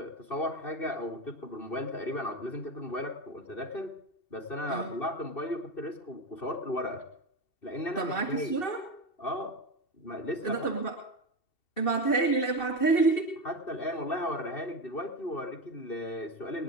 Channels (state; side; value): late; right; 2.7 ms